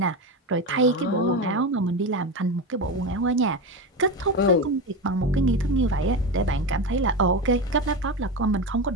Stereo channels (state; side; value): normal; both; correlation 0.18